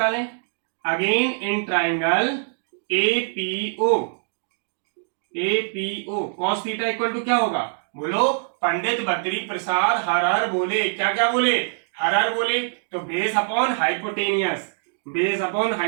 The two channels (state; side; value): silent; left; digital silence